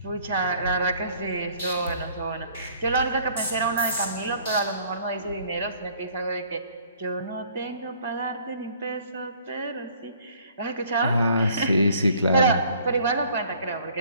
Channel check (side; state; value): both; inverted; correlation -0.57